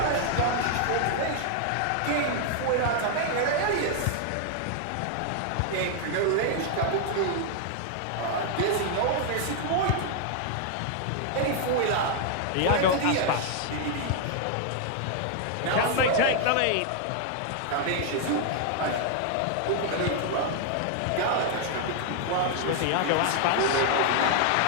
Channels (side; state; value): both; different; correlation 0.00